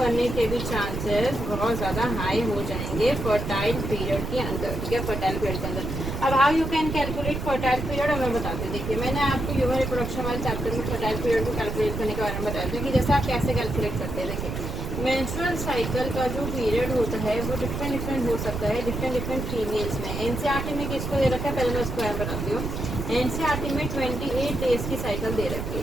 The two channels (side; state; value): right; noise; rumble, 5 dB below the sound